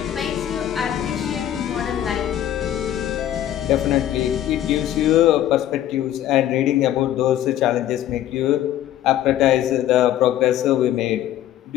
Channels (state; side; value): quieter; right; 12.1 dB